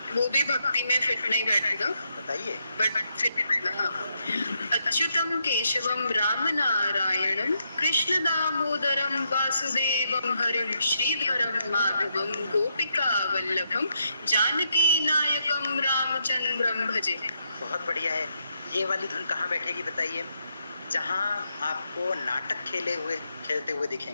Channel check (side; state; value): both; inverted; correlation -0.79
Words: वो भी भक्ति में फिट नहीं बैठेगा, बताइए। बट फिट बैठेगा। हाँ। अच्युतम केशवम राम नारायणम कृष्ण दामोदरम वासुदेवम हरिम श्रीधरम माधवम गोपिका वल्लभम जानकी नायकम रामचंद्रम भजे। बहुत बढ़िया है। ये वाली धुन कहाँ बैठेगी बताइए? जहाँ आपको नाटक खेलते हुए